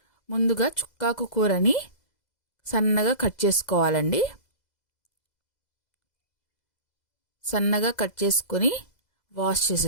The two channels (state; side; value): late; right; 2.0 ms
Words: ముందుగా చుక్కాకు కూరని సన్నగా కట్ చేసుకోవాలండి. సన్నగా కట్ చేసుకొని వాష్